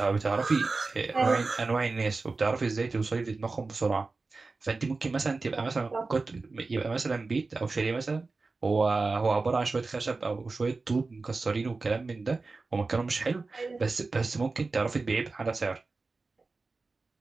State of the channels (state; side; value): quieter; left; 3.8 dB